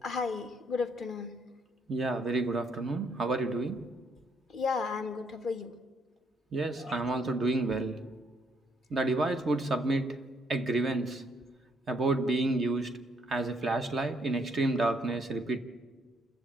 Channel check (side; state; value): both; normal; correlation 0.71